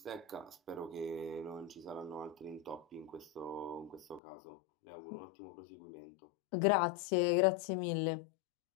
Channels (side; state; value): right; drops out; at 4.2 s